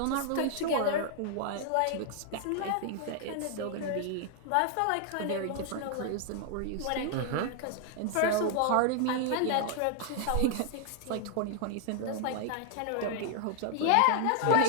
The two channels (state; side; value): different; both; correlation 0.00